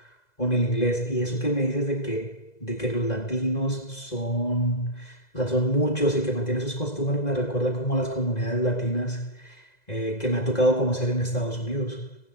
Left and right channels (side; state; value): right; late; 2.0 ms